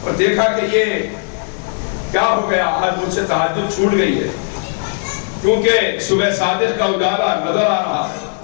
اور دیکھا کہ یہ کیا ہو گیا، آج مجھ سے تہجد چھوٹ گئی ہے، کیونکہ صبح صادق کا اجالا نظر آ رہا ہے۔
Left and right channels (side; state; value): right; silent; 67 dB below the other